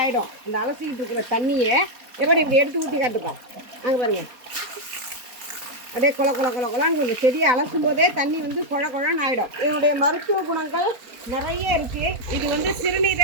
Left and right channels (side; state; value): left; late; 4.0 ms